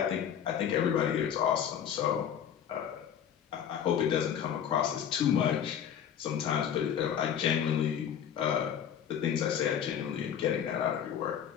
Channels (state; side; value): quieter; right; 8.9 dB